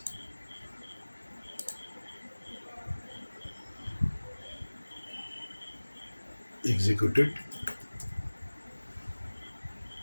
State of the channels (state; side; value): inverted; both; correlation -1.00